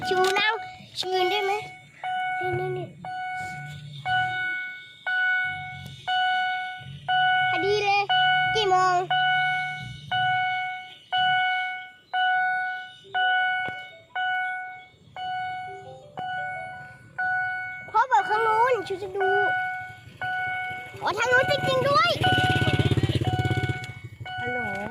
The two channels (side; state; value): both; identical; correlation 1.00